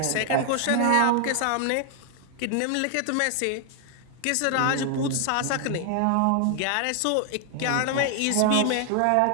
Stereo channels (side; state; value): both; different; correlation 0.00